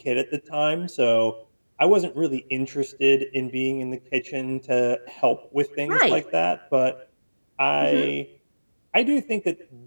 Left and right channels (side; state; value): both; inverted; correlation -1.00